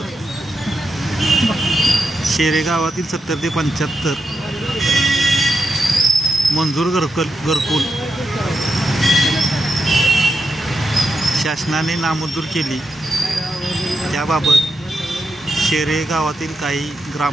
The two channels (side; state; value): both; normal; correlation 0.86